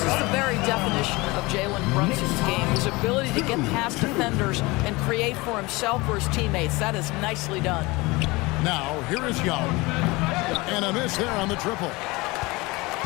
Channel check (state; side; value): quieter; right; 23.2 dB